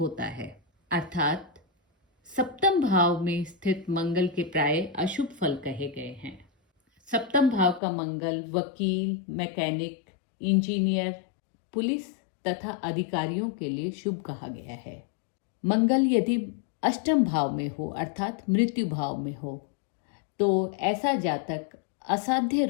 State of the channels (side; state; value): right; drops out; at 7.8 s